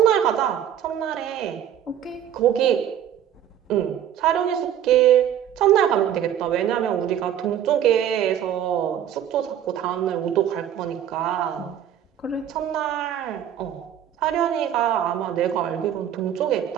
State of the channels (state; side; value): quieter; left; 10.1 dB